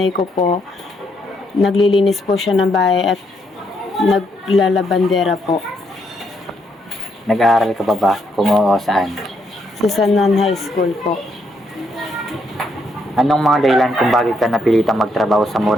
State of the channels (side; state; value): both; normal; correlation 0.75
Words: ko po, naglilinis po siya ng bahay at naglalabandera po. Nag-aaral ka pa ba? Kung oo, saan? Sa San Juan High School po. Anong mga dahilan kung bakit ka napilitang magtrabaho sa